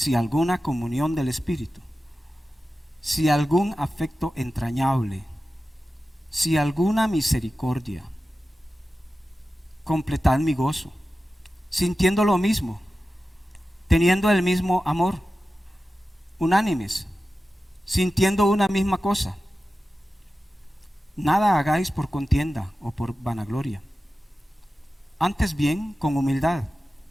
alguna comunión del Espíritu, si algún afecto entrañable, si alguna misericordia, completad mi gozo, sintiendo lo mismo, teniendo el mismo amor, unánimes, sintiendo una misma cosa. Nada hagáis por contienda o por vanagloria, antes bien con humildad,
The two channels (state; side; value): normal; both; correlation 0.94